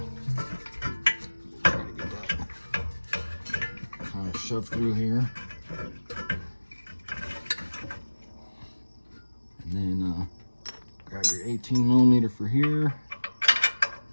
to get that shove through here. And then grab your 18mm for here.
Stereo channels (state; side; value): inverted; both; correlation -1.00